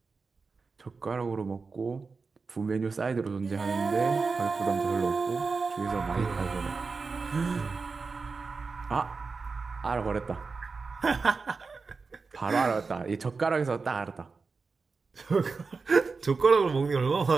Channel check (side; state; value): left; quieter; 4.5 dB